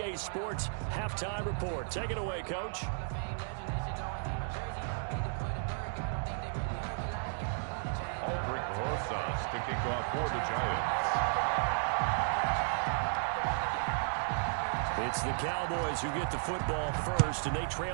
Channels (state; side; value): silent; left; digital silence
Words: Sports Halftime Report. Take it away, Coach. Aldrich Rosas to kick off for the Giants. It's the Cowboys who get the football first, and they